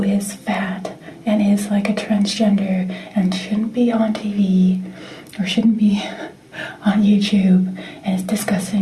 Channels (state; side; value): identical; both; correlation 1.00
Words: is fat and is like a transgender and shouldn't be on TV or shouldn't be on YouTube and is